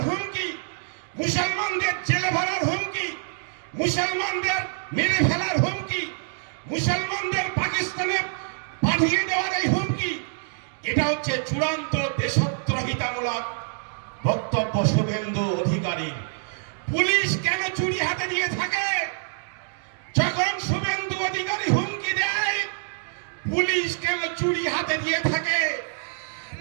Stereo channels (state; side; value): silent; left; digital silence